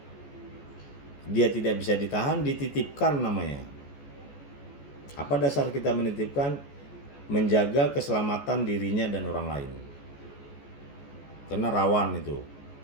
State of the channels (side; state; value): right; late; 14 ms